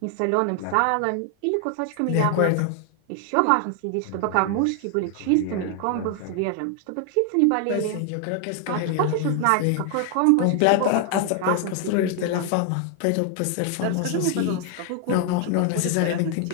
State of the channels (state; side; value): different; both; correlation 0.00